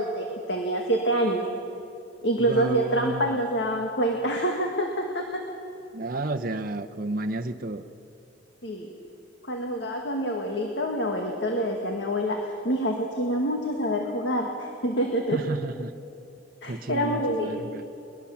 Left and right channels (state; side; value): normal; both; correlation 0.10